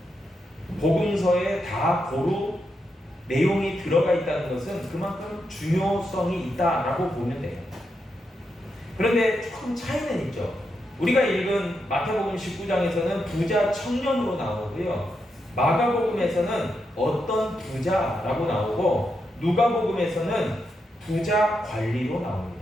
복음서에 다 고루 내용이 들어가 있다는 것은 그만큼 중요성이 있다라고 보면 돼요. 그런데 조금 차이는 있죠. 우리가 읽은 마태복음 19장에서는 부자 청년으로 나오고요. 마가복음에서는 어떤 부자라고 나오고 누가복음에서는 부자 관리로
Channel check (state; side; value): normal; both; correlation 0.84